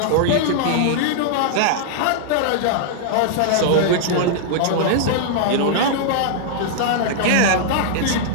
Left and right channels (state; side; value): different; both; correlation -0.01